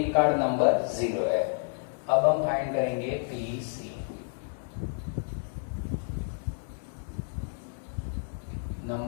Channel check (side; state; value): right; silent; digital silence